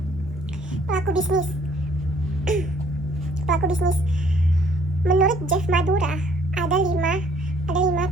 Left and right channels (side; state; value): both; normal; correlation 0.62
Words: Pelaku bisnis. Pelaku bisnis. Menurut Jeff Madura, ada lima